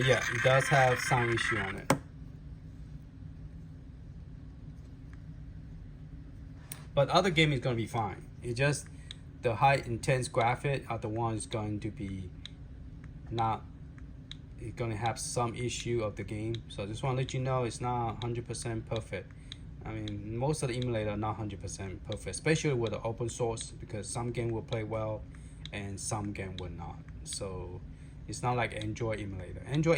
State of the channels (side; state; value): both; identical; correlation 1.00